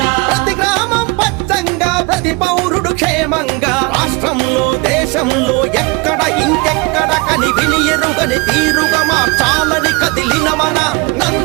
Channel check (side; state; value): left; quieter; 26.4 dB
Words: ప్రతి గ్రామం పచ్చంగా ప్రతి పౌరుడు క్షేమంగా రాష్ట్రంలో దేశంలో ఎక్కడ ఇంకెక్కడ కని విని ఎరుగని తీరుగా మార్చాలని కదిలిన మన